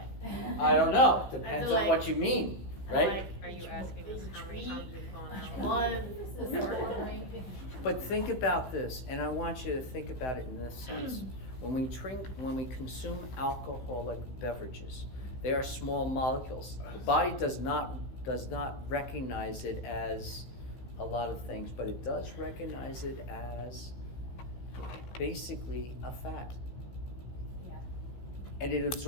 I don't know, depends on what you mean, right? Like, are you asking us how many times we've gone out? One. But think about this, and I want you to think about it in this sense. When we consume alcoholic beverages, they are small molecules. The body does not recognize it as a lot of things, but it does recognize it as basically a fat. Yeah. And it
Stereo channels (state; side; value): late; right; 15 ms